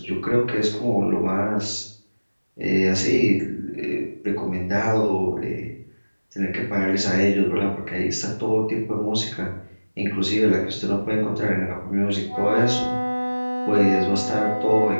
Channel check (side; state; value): both; inverted; correlation -1.00